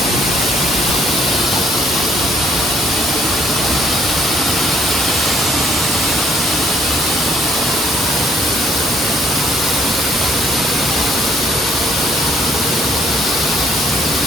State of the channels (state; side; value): normal; both; correlation 0.66